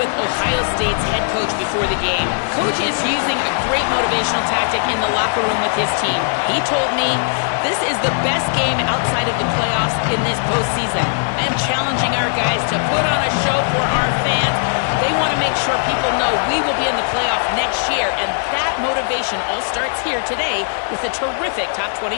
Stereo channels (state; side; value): silent; right; 67 dB below the other